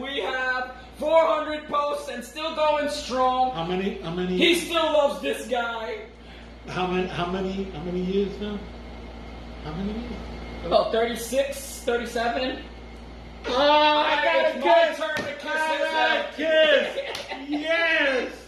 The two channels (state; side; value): identical; both; correlation 1.00